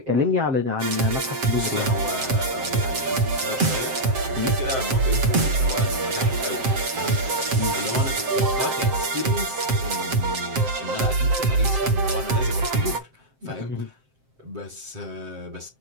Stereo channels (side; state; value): left; late; 7.6 ms